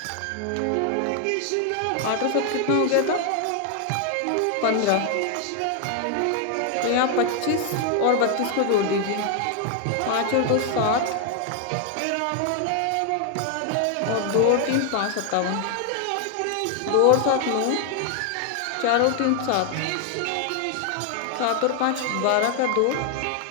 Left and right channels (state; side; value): different; both; correlation 0.00